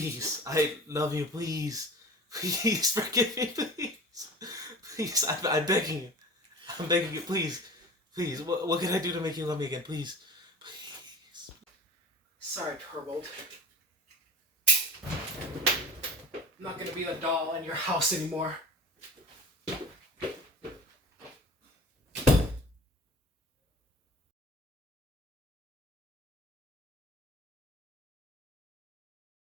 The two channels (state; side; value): normal; both; correlation 0.38